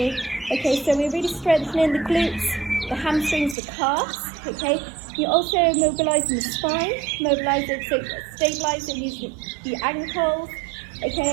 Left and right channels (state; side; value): drops out; left; at 3.6 s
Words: Okay, so we're really strengthening the glutes, the hamstrings, the calves. Okay, you're also mobilising the spine, stabilising the ankles.